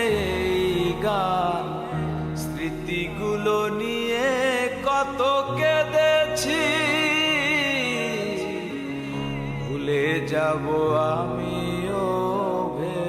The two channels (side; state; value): both; identical; correlation 1.00